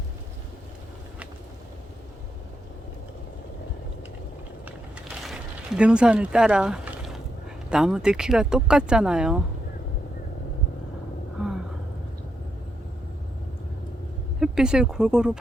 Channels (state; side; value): normal; both; correlation 0.82